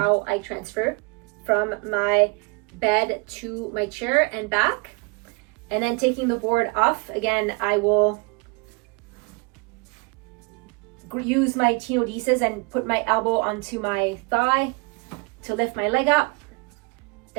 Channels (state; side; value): quieter; left; 30.1 dB